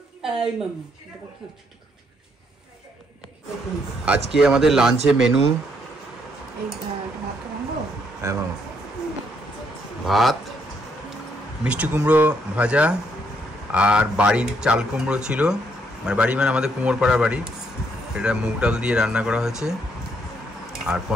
আজকে আমাদের লাঞ্চে মেনু ভাত, মিষ্টি কুমড়ো ভাজা, আর বাড়ির চাল কুমড়ো ছিল, মানে বাড়ি মানে আমাদের কুমোরপাড়ার বাড়ি, এটা মুগ ডাল দিয়ে রান্না করা হয়েছে, আর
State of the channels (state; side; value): normal; both; correlation 0.72